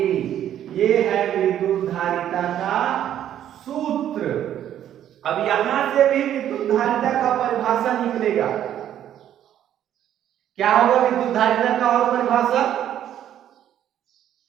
अब यहां से भी विद्युत धारिता का परिभाषा निकलेगा। क्या होगा विद्युत धारिता का और परिभाषा?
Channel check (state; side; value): quieter; left; 10.9 dB